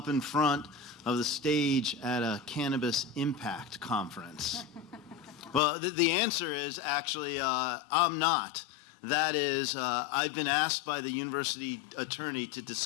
in front of the stage at a Cannabis Impact conference? Well, the answer is actually I'm not. That is, I've been asked by the university attorney to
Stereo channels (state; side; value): drops out; right; at 5.6 s